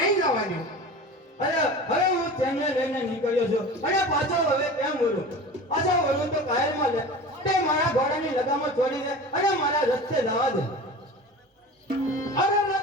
જવાની અરે હવે હું તેમને લઈને નીકળ્યો છું અને પાછો હવે કેમ બોલું પાછો બોલું તો કાયરમાં લે તે મારા ઘોડાની લગામમાં છોડી દે અને મારા રસ્તે જવા દે અરે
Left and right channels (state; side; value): normal; both; correlation 0.35